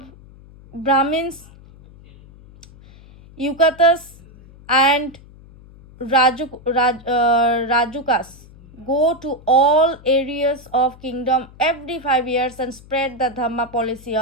Brahmins, Yukatas and Rajukas go to all areas of kingdom every 5 years and spread the Dhamma policy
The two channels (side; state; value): left; noise; hum, 22 dB below the sound